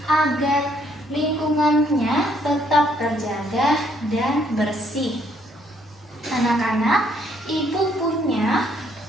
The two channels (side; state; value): both; normal; correlation 0.69